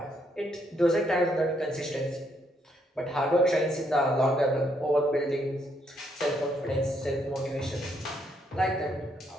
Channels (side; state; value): both; normal; correlation 0.74